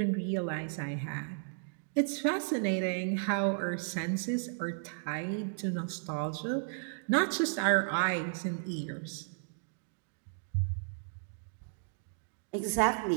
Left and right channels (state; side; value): silent; left; digital silence